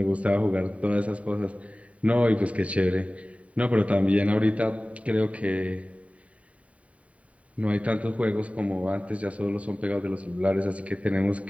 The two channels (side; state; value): left; late; 0.066 ms